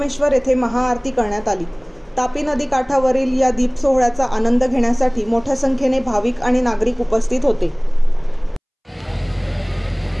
येथे महाआरती करण्यात आली। तापी नदी काठावरील या दीप सोहळ्याचा आनंद घेण्यासाठी मोठ्या संख्येने भाविक आणि नागरिक उपस्थित होते।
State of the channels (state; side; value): identical; both; correlation 1.00